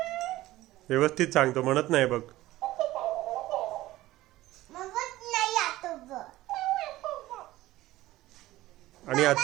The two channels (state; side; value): quieter; left; 16.5 dB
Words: व्यवस्थित सांगतो, म्हणत नाही बघ. आणि